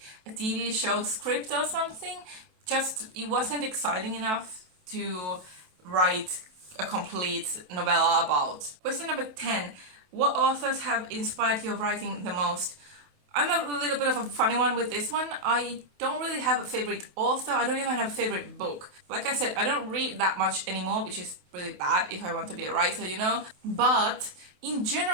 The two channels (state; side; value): late; left; 28 ms